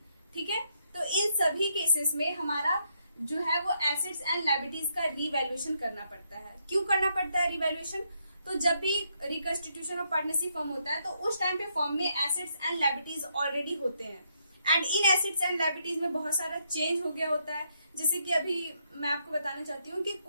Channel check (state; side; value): inverted; both; correlation -0.77